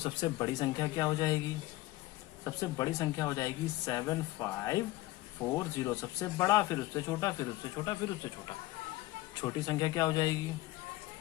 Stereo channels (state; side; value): quieter; right; 18.1 dB